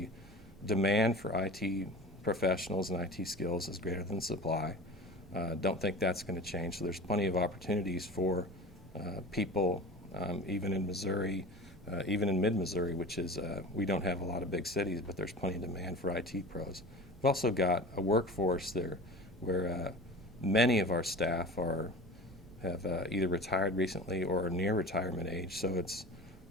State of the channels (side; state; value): both; normal; correlation 0.36